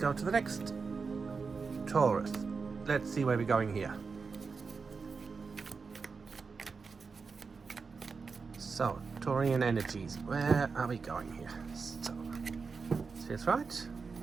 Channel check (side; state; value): left; quieter; 4.9 dB